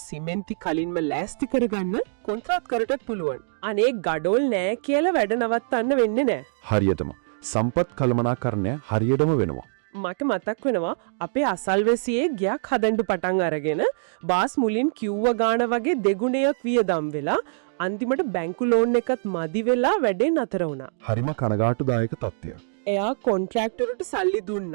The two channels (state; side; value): silent; left; digital silence